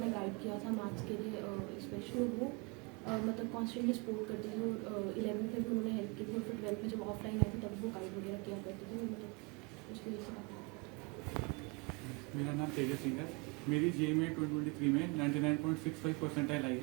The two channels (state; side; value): quieter; left; 30.3 dB